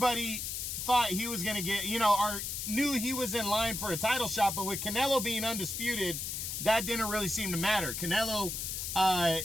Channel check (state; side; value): noise; left; hiss, 4 dB below the sound